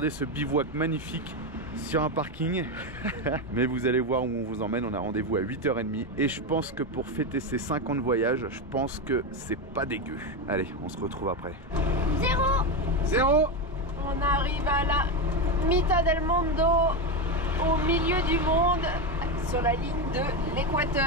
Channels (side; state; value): both; normal; correlation 0.12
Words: ce bivouac magnifique sur un parking. Mais vous allez voir où on vous emmène. On a rendez-vous à 8h30 et je pense que pour fêter ces 5 ans de voyage, je pense que c'est pas dégueu. Allez, on se retrouve après. 0. On arrive à la Mitad del Mundo, au milieu du monde, sur la ligne de